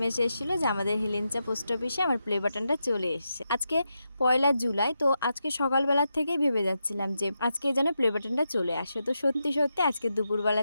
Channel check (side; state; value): both; inverted; correlation -0.86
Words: এসেছিল যে আমাদের হিলেঞ্চা পোস্ট অফিসে আমার প্লে বাটনটা চলে এসছে। আজকে 1লা জুলাই, তো আজকে সকালবেলার থেকেই ভেবে যাচ্ছিলাম যে আজকে যেন প্লে বাটনটা চলে আসে। তো সত্যি সত্যি আজকে